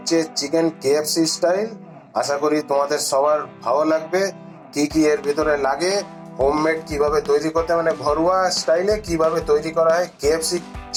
চিকেন কেএফসি স্টাইল। আশা করি তোমাদের সবার ভালো লাগবে। কি কি এর ভিতরে লাগে, হোমমেড কিভাবে তৈরি করতে, মানে ঘরোয়া স্টাইলে কিভাবে তৈরি করা হয় কেএফসি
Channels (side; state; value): both; identical; correlation 1.00